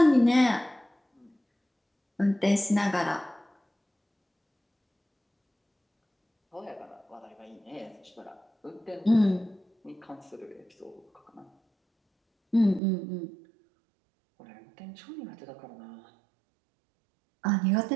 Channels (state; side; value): drops out; left; at 12.8 s